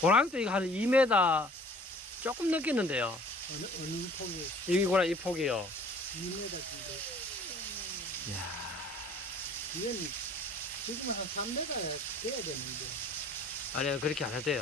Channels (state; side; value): normal; both; correlation 0.51